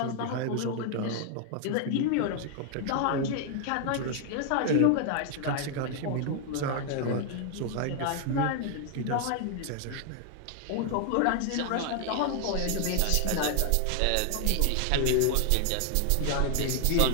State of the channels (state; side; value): different; both; correlation 0.00